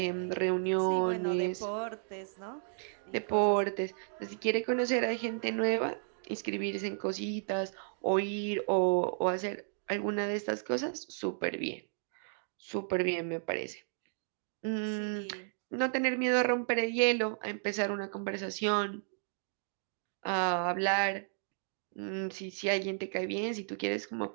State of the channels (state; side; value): silent; left; digital silence